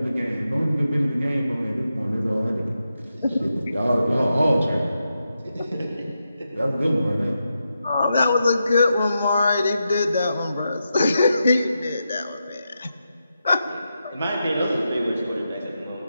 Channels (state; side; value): inverted; both; correlation -0.87